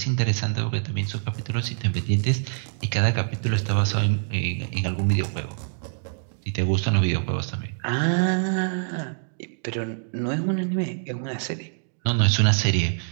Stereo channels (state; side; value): silent; left; digital silence